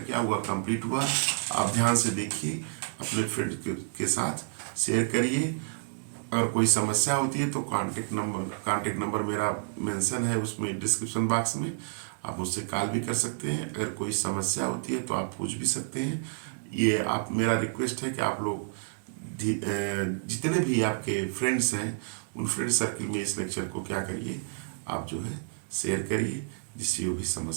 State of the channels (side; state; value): left; silent; digital silence